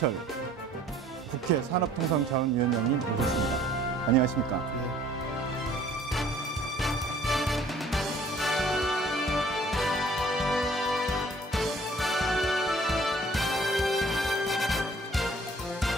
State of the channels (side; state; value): both; normal; correlation 0.55